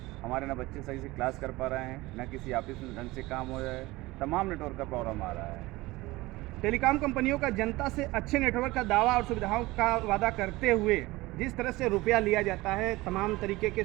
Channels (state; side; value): quieter; left; 20.2 dB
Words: हमारे ना बच्चे सही से क्लास कर पा रहे हैं, ना किसी ऑफिस में ढंग से काम हो रहा है, तमाम नेटवर्क का प्रॉब्लम आ रहा है। टेलीकॉम कंपनियों का जनता से अच्छे नेटवर्क का दावा और सुविधाओं का वादा करते हुए जिस तरह से रुपया लिया जाता है, तमाम तरीके के